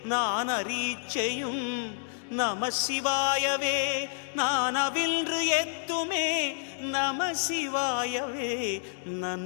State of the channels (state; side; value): silent; right; digital silence